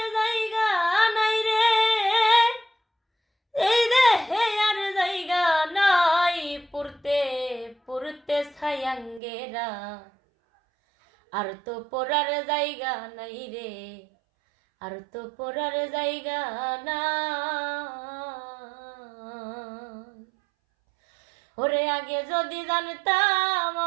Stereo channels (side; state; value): left; drops out; at 9.2 s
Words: জায়গা নাই রে, এই দেহে আর জায়গা নাই, পুরতে পুরতে ছায়াঙ্গেরা, আর তো পড়ার জায়গা নাই রে, আর তো পড়ার জায়গা না। ওরে আগে যদি জানতাম